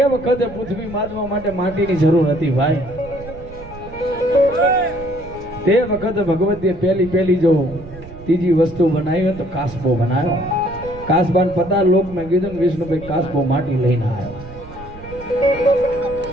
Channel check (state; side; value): noise; right; rumble, 16 dB below the sound